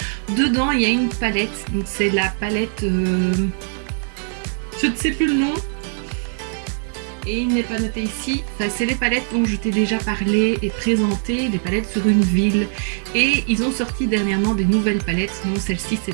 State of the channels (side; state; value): left; silent; 65 dB below the other